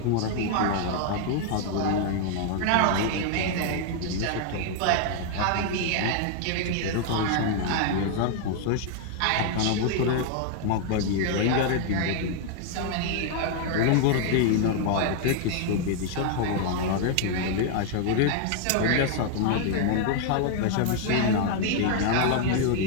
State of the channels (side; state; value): both; different; correlation 0.00